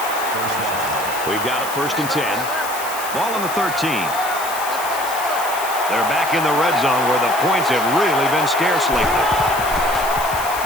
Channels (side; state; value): left; noise; hiss, 10 dB below the sound